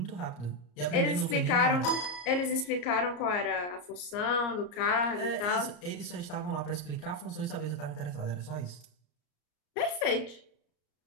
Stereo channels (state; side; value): late; right; 34 ms